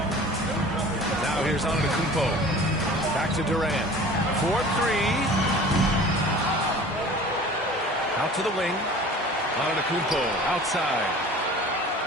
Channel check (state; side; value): normal; both; correlation 0.43